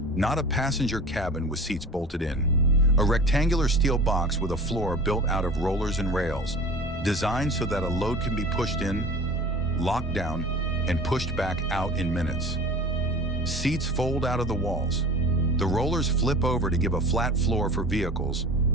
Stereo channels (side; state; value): both; normal; correlation 0.38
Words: Not a passenger cabin with seats bolted in. A rectangular steel box with a floor built out of rollers and rails, designed so that a load can be pushed in, locked down, and pushed back out in minutes. Seats fold out of the walls. The rollers flip over to give a flat floor for vehicles,